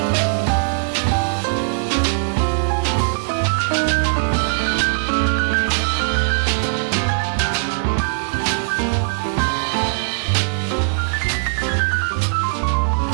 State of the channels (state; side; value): silent; left; digital silence